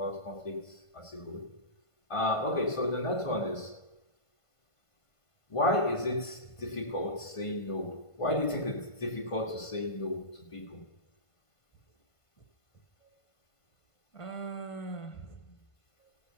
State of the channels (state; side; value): late; right; 1.5 ms